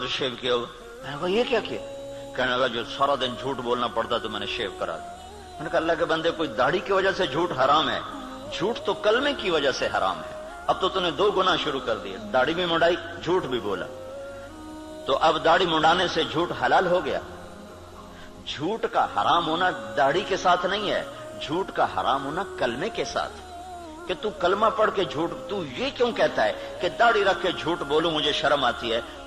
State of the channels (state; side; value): identical; both; correlation 1.00